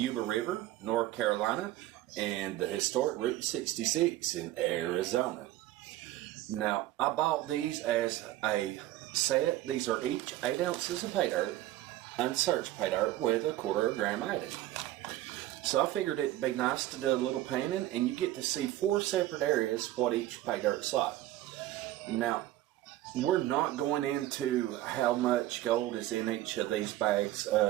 River, North Carolina, and the historic Route 66 in Arizona. Now, I bought these as a set. These are each 8 ounces of pay dirt, unsearched pay dirt, with a quarter of a gram added. So I figured it'd be nice to do a little painting, and you get to see 4 separate areas what each pay dirt's like. Now, we're not going into how much gold is in each of these bags.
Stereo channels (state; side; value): quieter; left; 15.1 dB